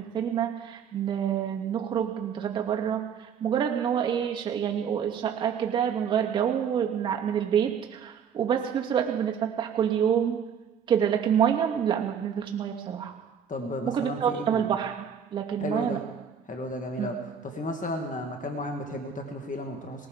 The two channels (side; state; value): left; quieter; 7.3 dB